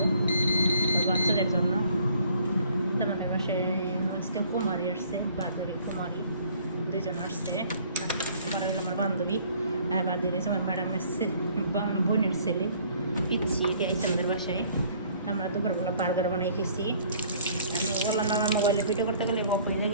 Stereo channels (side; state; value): both; inverted; correlation -0.58